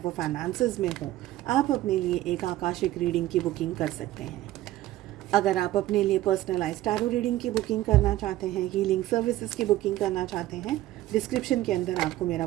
फाइनेंसेस में हो, आप अपने लिए एक आकाशिक रीडिंग की बुकिंग कर सकते हैं। अगर आप अपने लिए पर्सनलाइज्ड टैरो रीडिंग की बुकिंग करना चाहते हैं, हीलिंग सर्विसेज की बुकिंग करना चाहते हैं, डिस्क्रिप्शन के अंदर आपको मेरा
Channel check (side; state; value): left; quieter; 15.3 dB